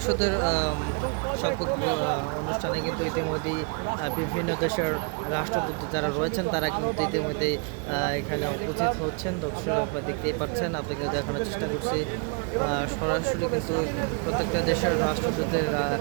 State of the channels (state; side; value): quieter; left; 36.0 dB